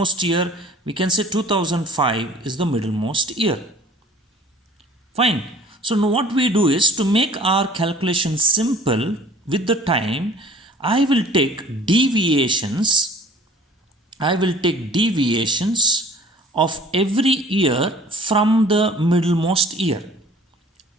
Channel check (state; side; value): normal; both; correlation 0.50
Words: year? We can say 2005 is the middlemost year. Fine. So now what we do is, to make our calculation simple with the time, I will take deviations. I will take deviations of every year from the middlemost year.